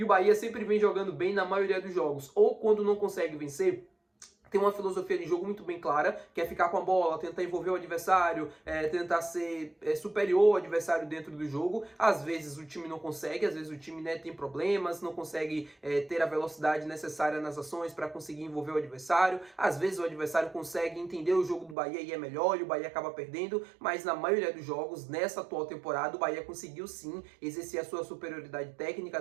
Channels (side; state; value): left; drops out; at 21.8 s